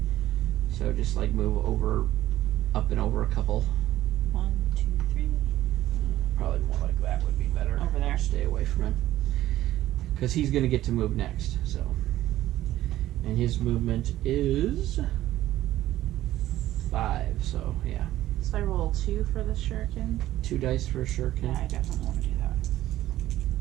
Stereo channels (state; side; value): quieter; left; 14.3 dB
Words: So just like move over, up and over a couple. 1, 2, 3. Probably more like that would be better. Over there. Stay away from him. Because he's going to get to move next, so. And his movement is 5, so yeah. So I roll 2 for the shuriken. 2 dice for a shuriken. Yeah, I definitely want to do that.